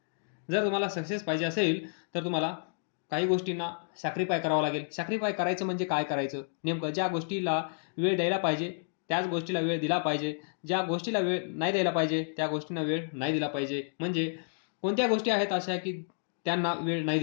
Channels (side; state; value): right; silent; digital silence